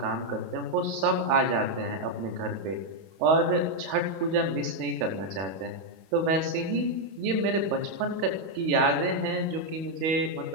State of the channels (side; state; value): left; late; 31 ms